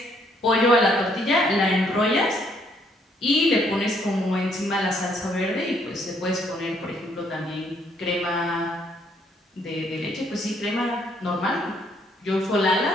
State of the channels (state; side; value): normal; both; correlation 0.68